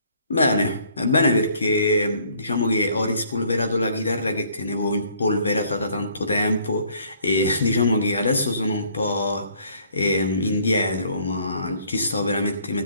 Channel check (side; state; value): both; inverted; correlation -0.61